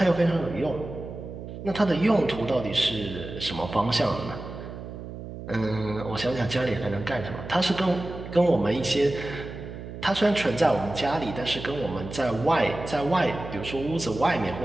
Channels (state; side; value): noise; right; hum, 10 dB below the sound